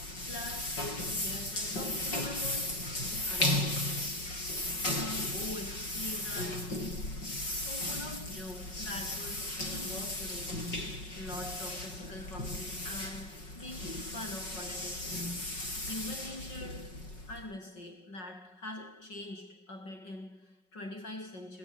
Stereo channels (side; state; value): right; late; 5.4 ms